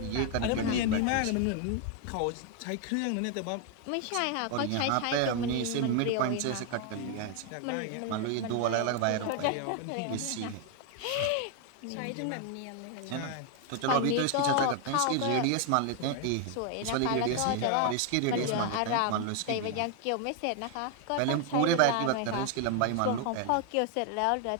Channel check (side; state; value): both; different; correlation 0.00